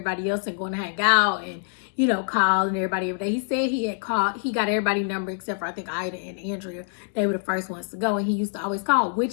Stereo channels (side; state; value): right; silent; digital silence